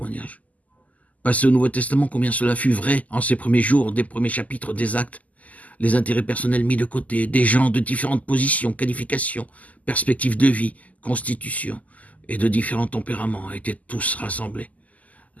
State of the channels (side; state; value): right; late; 0.075 ms